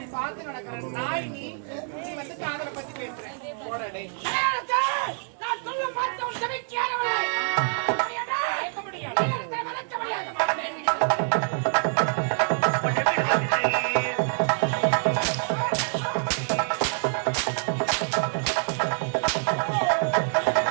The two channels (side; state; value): left; silent; 61 dB below the other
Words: பார்த்து நடக்கிற நாய் நீ வந்து காதலை பத்தி பேசுறேன். போடடே கலையரசே, நான் சொல்லும் வார்த்தை உன் செவிக்கு ஏறவில்லை. கேட்க முடியாது. எழிலரசனை மறக்க முடியாது.